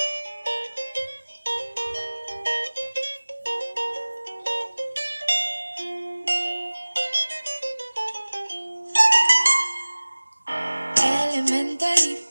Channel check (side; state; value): both; inverted; correlation -1.00